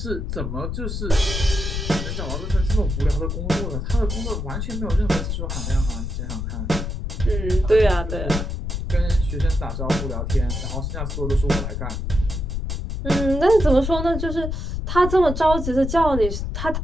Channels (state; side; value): noise; left; rumble, 3 dB below the sound